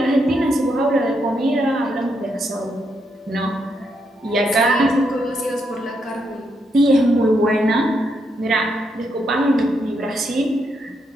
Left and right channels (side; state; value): both; normal; correlation 0.79